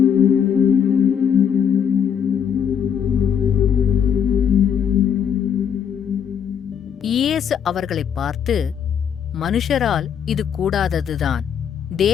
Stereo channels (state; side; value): quieter; right; 8.0 dB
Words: இயேசு அவர்களை பார்த்து, மனுஷரால் இது கூடாததுதான்,